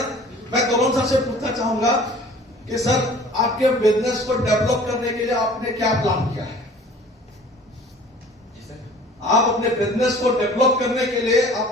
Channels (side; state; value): both; normal; correlation 0.48